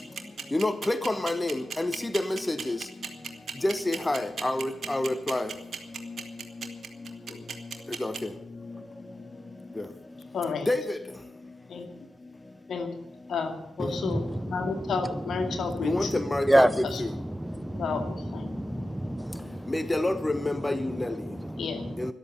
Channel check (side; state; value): both; normal; correlation 0.93